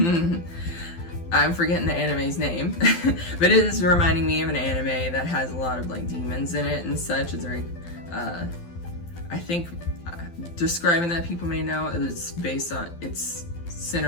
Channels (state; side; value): late; right; 12 ms